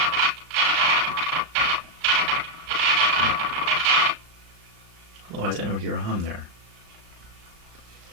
Otherwise I don't hear a hum there.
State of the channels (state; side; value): late; left; 35 ms